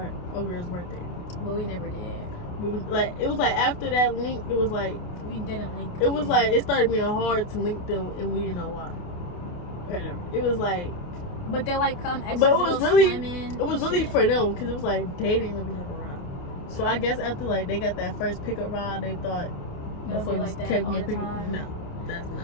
our girl's birthday. But we never did. We was like, it was like after that link, it was like, We didn't link. it was like, it started being hard to link them and we didn't know why. It was like, But they like come extra. but it was really, swimming it was and really shit. for them because it was like they didn't really have a ride. So I guess after like they got that first pickup ride, they thought It'll be like that kept all getting the pickup. time. No, that's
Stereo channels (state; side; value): late; right; 28 ms